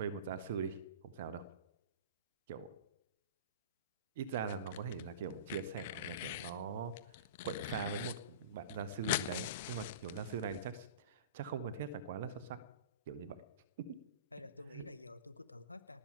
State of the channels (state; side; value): inverted; both; correlation -0.33